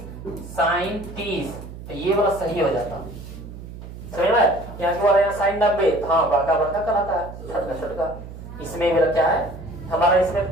साइन 30 तो ये वाला सही हो जाता। समझ में? यहाँ की वाला यहाँ साइन 90, हाँ बड़का बड़का कहलाता है, छोटका छोटका। इसमें मेरा क्या है हमारा, इसमें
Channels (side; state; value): right; noise; hum, 13 dB below the sound